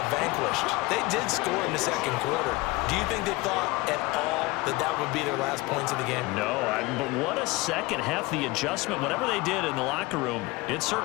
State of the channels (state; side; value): quieter; right; 21.9 dB